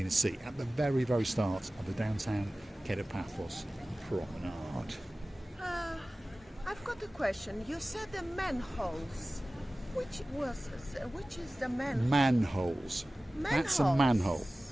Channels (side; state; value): both; normal; correlation 0.97